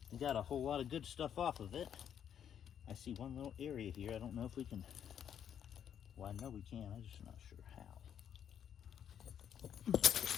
We got a whole lot of good stuff off of it. I see one little area here. I don't know if we can. Well, I know we can. I'm just not sure how.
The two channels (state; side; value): quieter; right; 9.0 dB